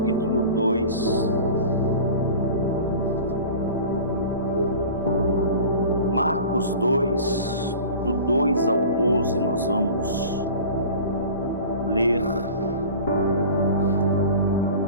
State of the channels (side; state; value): both; inverted; correlation -0.38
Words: 2. Marcos 2, do 2 ao 12, nós vamos ler.